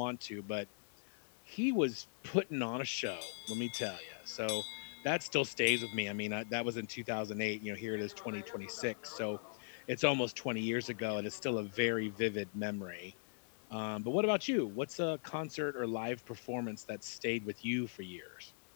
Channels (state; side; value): silent; right; digital silence